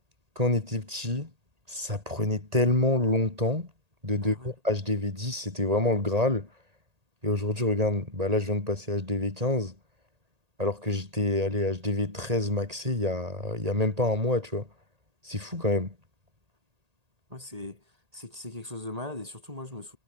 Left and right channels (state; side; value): late; left; 1.8 ms